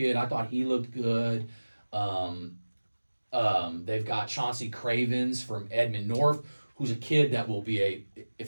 I thought he looked good. They've got Chauncey Cravens from Edmond North, who's a kid that will be if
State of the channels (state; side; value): inverted; both; correlation -1.00